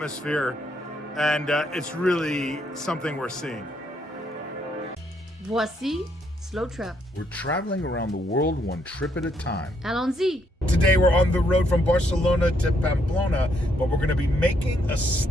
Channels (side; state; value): both; normal; correlation 0.73